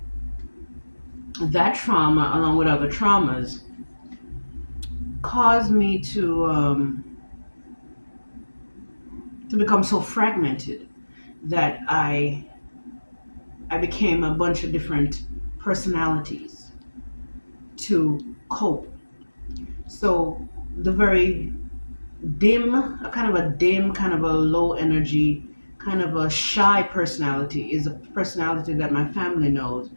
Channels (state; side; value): inverted; both; correlation -1.00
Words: that trauma, along with other traumas, caused me to become so fragmented that I became a bunch of different personalities to cope. So the very dim, kind of a low energy, kind of a shy personality is a personality that my family knows,